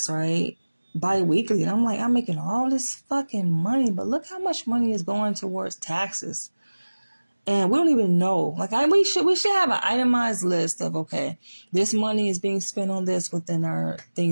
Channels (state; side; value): inverted; both; correlation -1.00